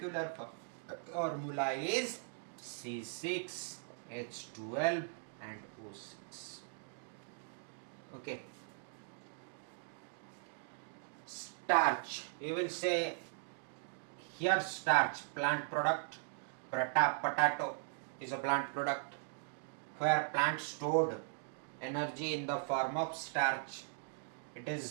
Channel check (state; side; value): silent; left; digital silence